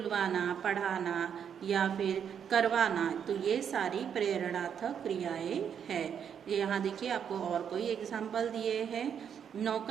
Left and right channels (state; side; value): quieter; left; 8.0 dB